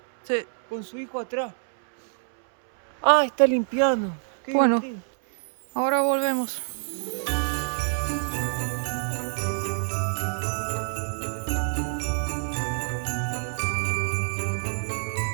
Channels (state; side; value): silent; left; 61 dB below the other